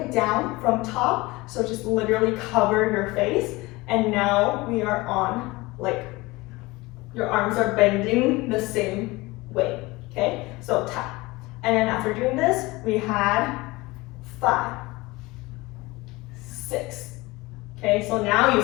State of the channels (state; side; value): quieter; right; 21.9 dB